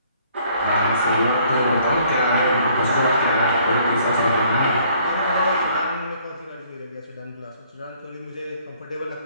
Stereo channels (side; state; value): both; inverted; correlation -0.62